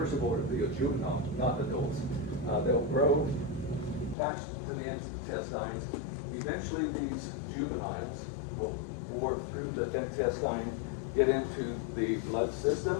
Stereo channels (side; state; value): right; drops out; at 4.2 s